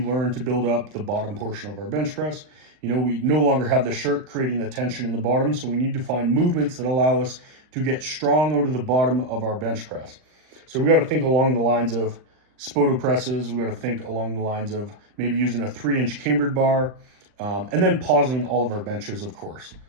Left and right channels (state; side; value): late; left; 39 ms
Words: to build up the bottom portion of our bench press. You know, we no longer have the shirt creating the tension in the bottom, so we need to find movements that allow us to get strong out of the bottom of our bench press. So we got to think along the lines of spoto presses. We got to think along the lines of maybe using a 3-inch cambered bar, and then pausing all of our benches, of course.